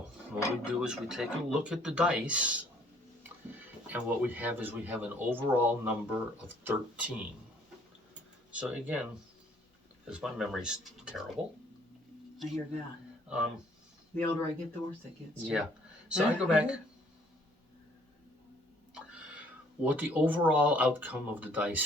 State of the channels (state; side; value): normal; both; correlation 0.61